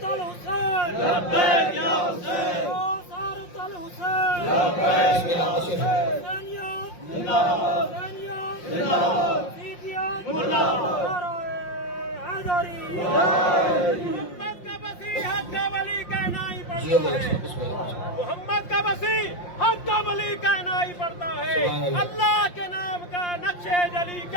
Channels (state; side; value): late; right; 5.7 ms